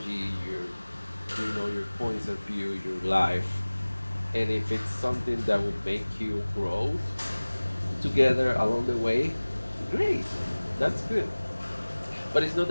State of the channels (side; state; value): both; inverted; correlation -1.00